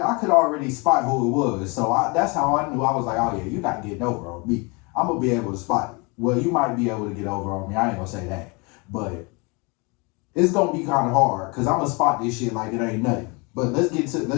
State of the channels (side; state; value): right; quieter; 29.6 dB